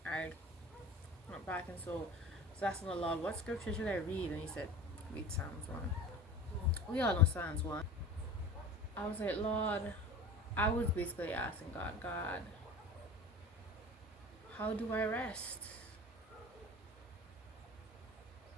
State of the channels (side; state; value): both; normal; correlation 0.36